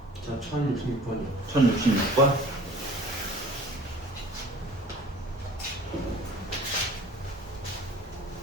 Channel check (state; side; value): normal; both; correlation 0.47